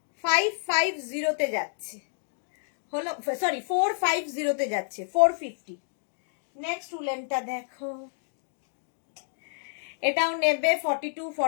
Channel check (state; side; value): silent; right; digital silence